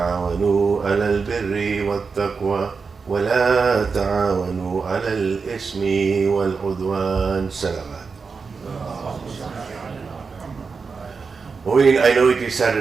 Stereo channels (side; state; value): left; quieter; 5.0 dB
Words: على البر والتقوى ولا تعاونوا على الإثم والعدوان. Salawat. I know it is